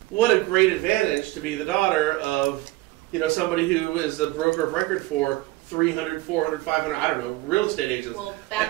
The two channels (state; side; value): quieter; left; 19.1 dB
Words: what a great advantage to be the daughter of, somebody who is a broker of record for 300, 400, 500, I don't know, real estate agents. Well,